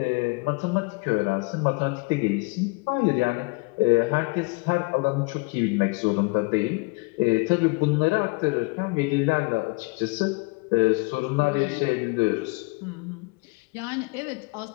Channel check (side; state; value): right; quieter; 28.4 dB